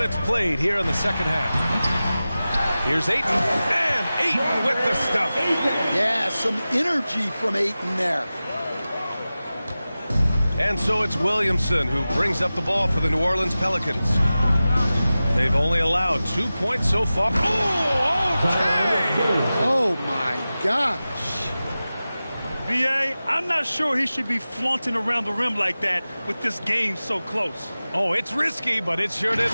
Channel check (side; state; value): both; inverted; correlation -0.96